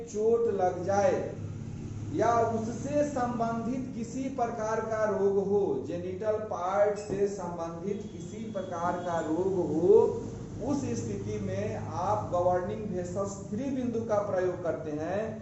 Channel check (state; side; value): identical; both; correlation 1.00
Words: चोट लग जाए या उससे संबंधित किसी प्रकार का रोग हो, जेनिटल पार्ट से संबंधित किसी प्रकार का रोग हो, उस स्थिति में आप गवर्निंग वेसल्स 3 बिंदु का प्रयोग करते हैं